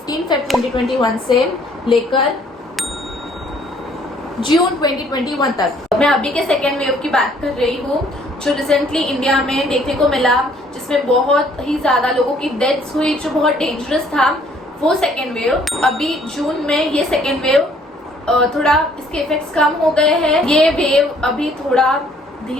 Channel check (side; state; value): both; normal; correlation 0.61